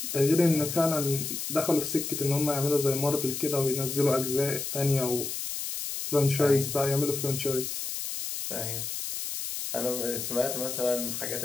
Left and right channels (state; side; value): noise; left; hiss, 5 dB below the sound